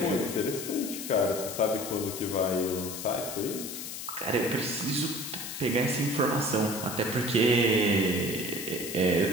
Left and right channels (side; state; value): left; noise; hiss, 8 dB below the sound